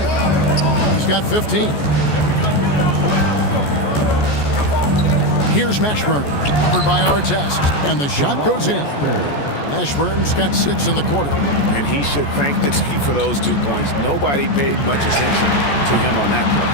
He's got 15. Here's Mashburn, covered by Artest, and the shot goes in. Mashburn's got 6 in the quarter. And he should thank the team for those 2 points. Nobody paid much attention to him on that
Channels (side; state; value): right; late; 14 ms